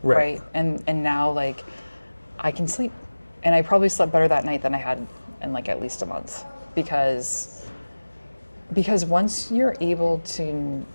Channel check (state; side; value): inverted; both; correlation -1.00